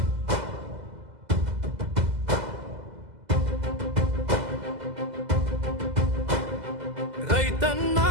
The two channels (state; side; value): late; left; 2.0 ms